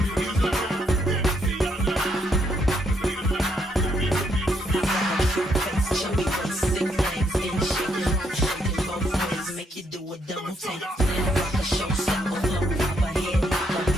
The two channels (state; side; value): normal; both; correlation 0.74